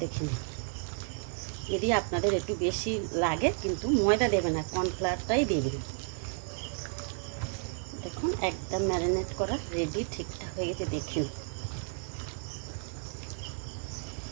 দেখুন যদি আপনাদের একটু বেশি লাগে কিন্তু ময়দা দেবেন না, কর্নফ্লাওয়ারটাই দেবেন। দেখুন একদম ম্যারিনেট করা রেডি, ঠিকঠাক হয়ে গেছে।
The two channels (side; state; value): left; silent; 56 dB below the other